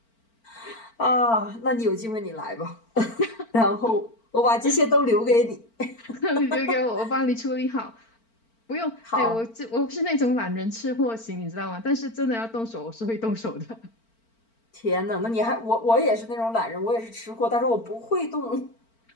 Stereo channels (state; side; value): late; right; 4.4 ms